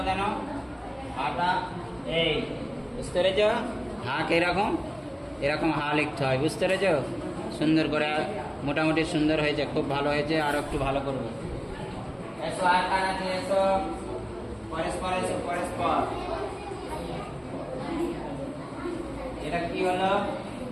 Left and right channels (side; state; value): both; identical; correlation 1.00